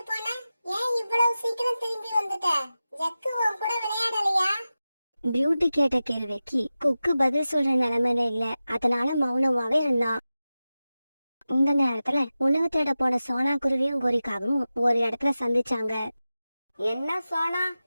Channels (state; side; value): inverted; both; correlation -0.94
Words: போன? ஏன் இவ்வளவு சீக்கிரம் திரும்பி வந்துட்ட? ஜக்கு உன் கூட விளையாடலையா? பியூட்டி கேட்ட கேள்விக்கு குக்கு பதில் சொல்ற நிலைமையில இல்ல. அதனால மௌனமாவே இருந்தான். இந்த நேரத்துல உணவு தேட போன சோனா குருவியும் கோரிக்காவும் ஒரு இடத்துல சந்திச்சாங்க. என்ன சோனா,